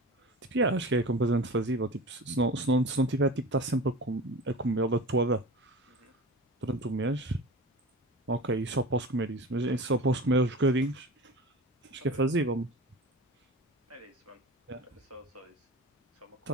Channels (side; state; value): both; normal; correlation 0.34